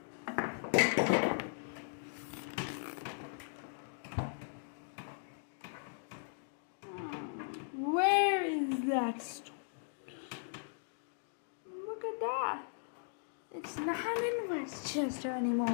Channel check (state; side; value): silent; right; digital silence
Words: Where is that? Look at that. It's not in Westchester